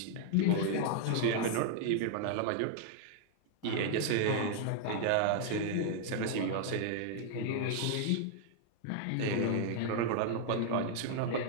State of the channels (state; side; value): different; both; correlation 0.00